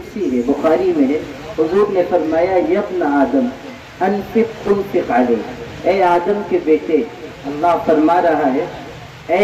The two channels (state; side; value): identical; both; correlation 1.00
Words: ہے، بخاری میں ہے۔ حضور نے فرمایا، یا ابن آدم انفق تنفق علیہ، اے آدم کے بیٹے، اللہ فرما رہا ہے